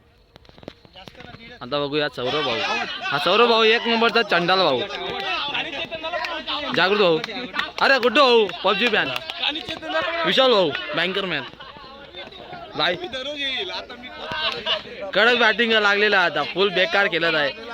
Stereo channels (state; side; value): identical; both; correlation 1.00